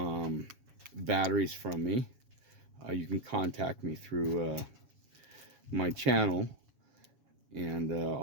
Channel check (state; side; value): late; left; 7.2 ms